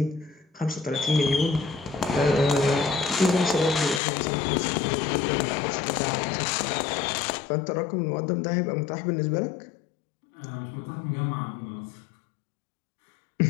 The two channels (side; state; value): right; drops out; at 4.0 s